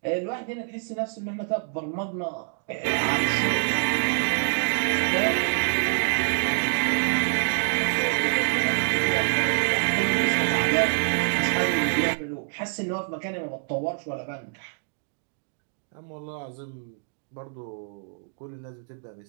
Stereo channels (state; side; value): silent; left; 61 dB below the other